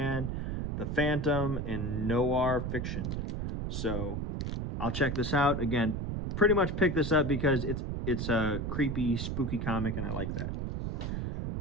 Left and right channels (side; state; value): right; noise; rumble, 3 dB below the sound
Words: the Phantom, and noir fiction. So I'll check this out. Again, pretty much picked this up because it's a creepy, spooky comic, and I like that.